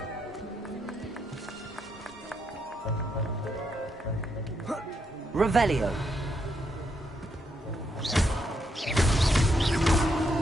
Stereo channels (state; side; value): normal; both; correlation 0.78